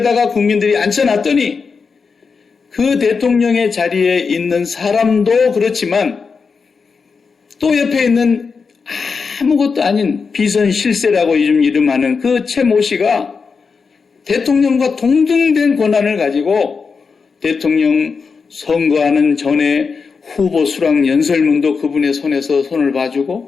국민들이 앉혀놨더니 그 대통령의 자리에 있는 사람도 그렇지만 또 옆에 있는 아무것도 아닌 비선 실세라고 요즘 이름하는 그 최모 씨가 대통령과 동등된 권한을 가지고 대통령 선거하는 전에 후보 수락 연설문도 그분의 손에서 손을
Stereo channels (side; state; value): right; quieter; 5.2 dB